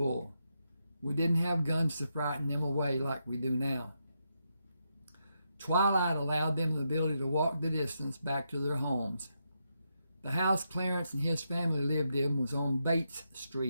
We didn't have guns to frighten them away like we do now. Twilight allowed them the ability to walk the distance back to their homes. The house Clarence and his family lived in was on Bates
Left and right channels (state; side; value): inverted; both; correlation -0.83